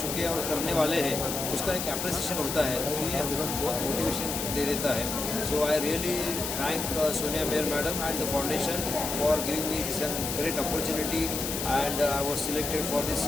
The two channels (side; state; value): left; noise; hiss, 3 dB below the sound